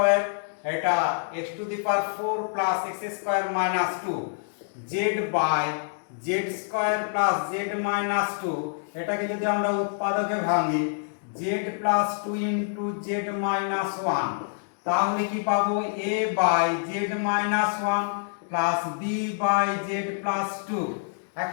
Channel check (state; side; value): silent; right; digital silence